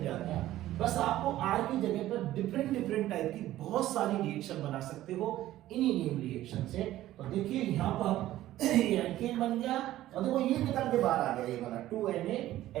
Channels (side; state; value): left; quieter; 14.5 dB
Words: जाता। बस आपको R की जगह पर डिफरेंट टाइप की बहुत सारी रिएक्शन बना सकते हो इन्हीं नेम रिएक्शन से। तो देखिए यहां पर एल्केन बन गया और देखो ये निकल के बाहर आ गया, ये वाला